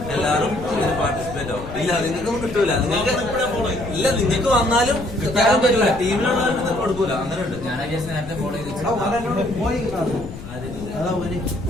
എല്ലാവരും ഇതിന് പാർട്ടിസിപ്പേറ്റ് ആവും. ഇല്ല നിങ്ങൾക്കൊന്നും കിട്ടൂല. നിങ്ങൾക്ക് ഇല്ല നിങ്ങൾക്ക് വന്നാലും തരാൻ പറ്റില്ല. ടീമിലുള്ളവർക്ക് നിങ്ങൾക്ക് കൊടുക്കൂല. അങ്ങനെ ഉണ്ട്. ഞാൻ നേരത്തെ ഫോളോ ചെയ്ത്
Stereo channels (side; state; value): left; noise; rumble, 12 dB below the sound